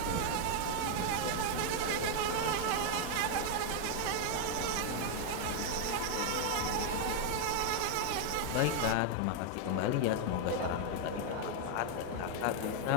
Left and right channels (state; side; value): different; both; correlation 0.00